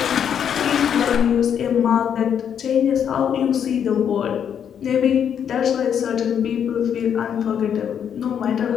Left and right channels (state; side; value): quieter; right; 8.4 dB